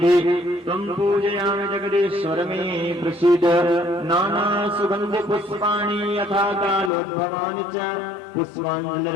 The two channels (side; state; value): right; drops out; at 6.9 s